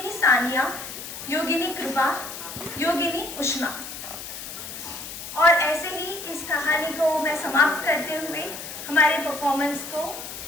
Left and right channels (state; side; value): noise; left; hiss, 10 dB below the sound